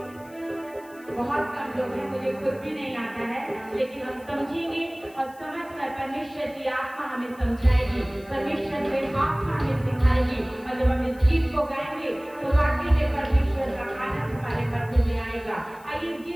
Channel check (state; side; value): noise; left; hiss, 26 dB below the sound